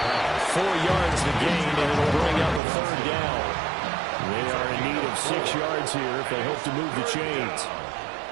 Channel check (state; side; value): drops out; left; at 2.6 s